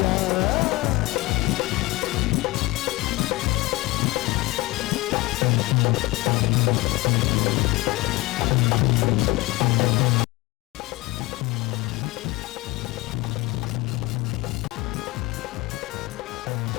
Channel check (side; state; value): right; quieter; 21.2 dB